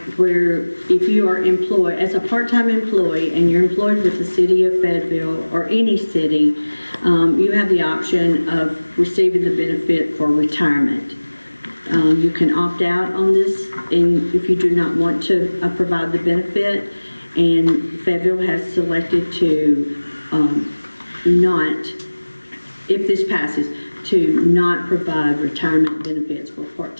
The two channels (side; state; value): both; inverted; correlation -1.00